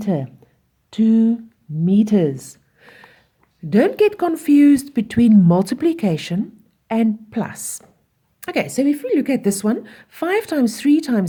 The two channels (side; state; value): both; identical; correlation 1.00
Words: 2 meters. Don't get confused between multiplication and plus. Okay, so if we look at this one, 5 times 3